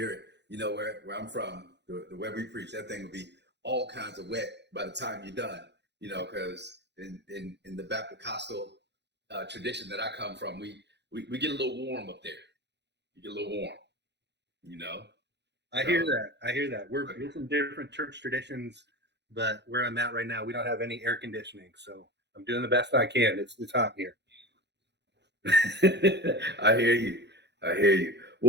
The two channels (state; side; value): late; left; 0.50 ms